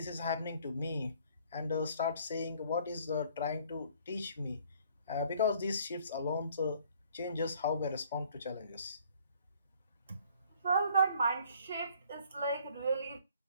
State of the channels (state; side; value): inverted; both; correlation -0.59